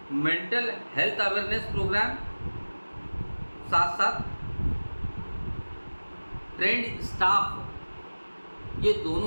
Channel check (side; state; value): both; inverted; correlation -1.00